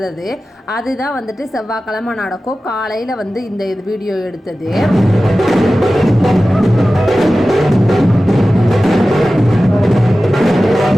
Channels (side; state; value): both; normal; correlation 0.95